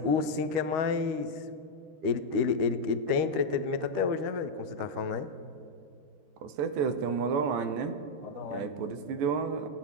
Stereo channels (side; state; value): left; late; 13 ms